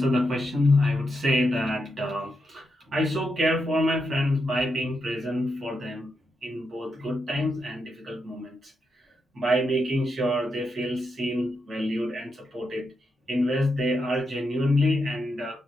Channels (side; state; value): both; normal; correlation 0.84